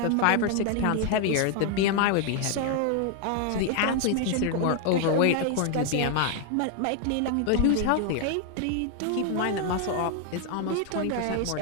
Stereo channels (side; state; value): both; different; correlation 0.00